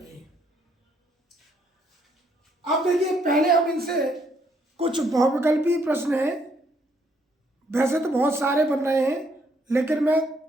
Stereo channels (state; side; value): normal; both; correlation 0.70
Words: हैं। अब देखिए, पहले हम इनसे कुछ बहुविकल्पी प्रश्न हैं, वैसे तो बहुत सारे बन रहे हैं, लेकिन मैं